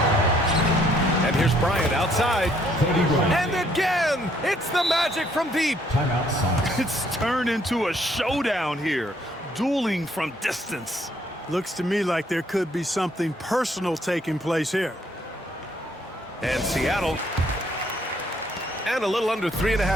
And here's Bryant outside. And again, it's the magic from deep. Timeout, Sonics. It's turned into a showdown here. Dueling from distance. Looks to me like there could be something personal taking place here. And Seattle. And a little under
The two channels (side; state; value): both; normal; correlation 0.67